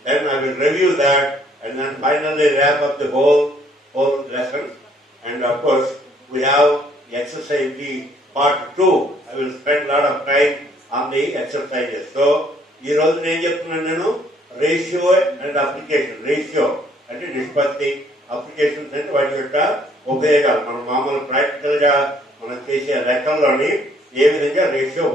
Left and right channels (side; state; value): both; normal; correlation 0.64